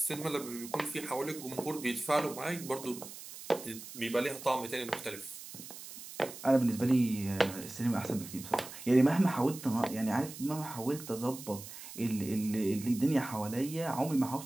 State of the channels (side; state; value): right; noise; hiss, 13 dB below the sound